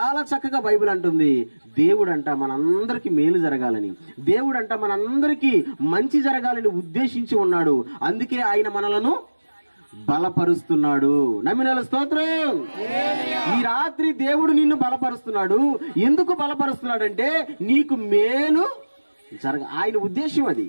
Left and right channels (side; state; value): both; inverted; correlation -1.00